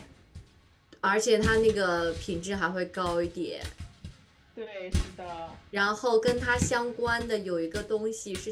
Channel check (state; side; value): identical; both; correlation 1.00